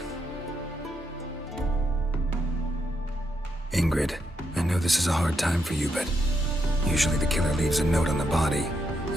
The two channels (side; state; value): both; normal; correlation 0.80